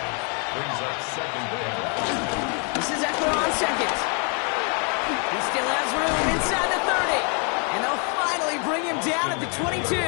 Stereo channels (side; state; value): right; quieter; 38.1 dB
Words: Brings up 2nd down. This is Eckler on 2nd. He still has room inside the 30. And they'll finally bring him down at the 22.